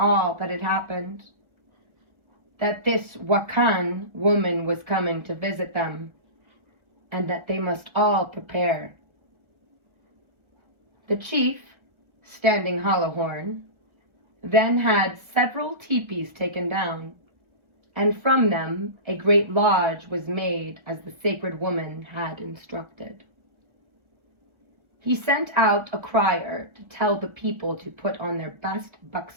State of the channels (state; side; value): late; left; 1.6 ms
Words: that had happened, that this Wakan woman was coming to visit them, and that they must all prepare. The chief, Standing Hollow Horn, then had several teepees taken down, and from them a great lodge was made as the sacred woman had instructed. He sent out a crier to tell the people to put on their best